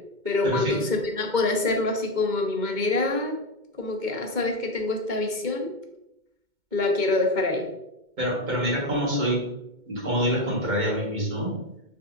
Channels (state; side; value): late; left; 2.2 ms